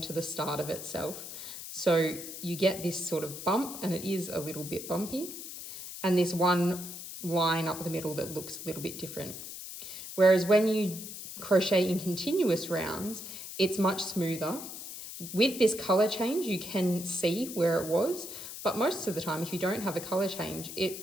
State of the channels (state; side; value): noise; left; hiss, 10 dB below the sound